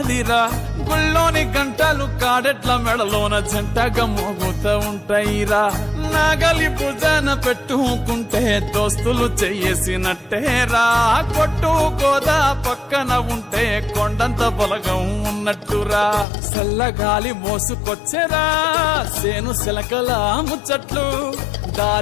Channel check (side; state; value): right; drops out; at 16.2 s